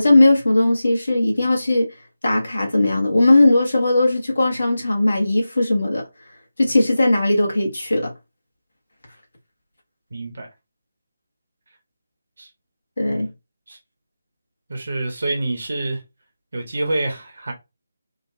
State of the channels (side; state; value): both; inverted; correlation -0.95